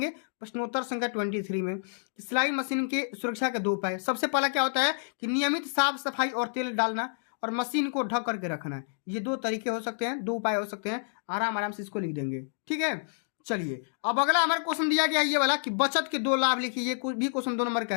प्रश्नोत्तर संख्या 23 में सिलाई मशीन की सुरक्षा के 2 उपाय। सबसे पहला क्या होता है कि नियमित साफ सफाई और तेल डालना और मशीन को ढक करके रखना। ये 2 तरीके हो सकते हैं, 2 उपाय हो सकते हैं। आराम आराम से इसको लिख देंगे, ठीक है। चलिए अब अगला हमारा क्वेश्चन दिया गया ये वाला कि बचत के 2 लाभ लिखिए। ये भी क्वेश्चन 2 नंबर का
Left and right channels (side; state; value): right; silent; digital silence